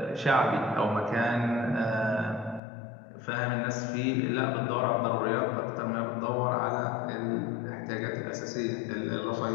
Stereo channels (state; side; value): drops out; right; at 2.6 s